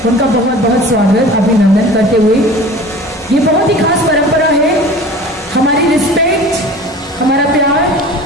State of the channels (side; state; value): both; normal; correlation 0.40